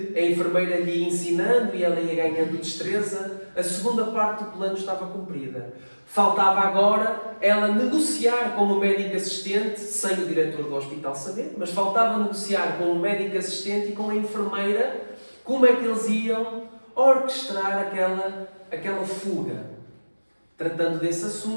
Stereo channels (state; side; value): inverted; both; correlation -1.00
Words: a enfermeira lhe ia ensinando e ela ia ganhando destreza, a segunda parte do plano estava cumprida. Faltava agora ela negociar com o médico assistente, sem o diretor do hospital saber, mas faltava negociar com o médico assistente e com a enfermeira como é que eles iam orquestrar aquela fuga. Tratando desse